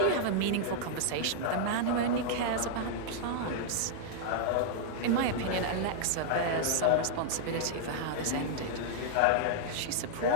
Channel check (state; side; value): different; both; correlation -0.01